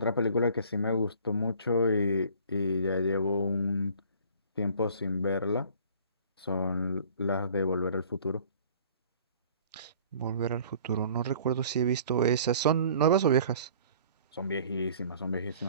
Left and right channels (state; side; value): inverted; both; correlation -0.51